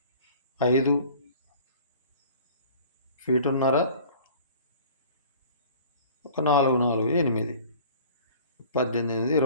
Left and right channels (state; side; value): inverted; both; correlation -0.47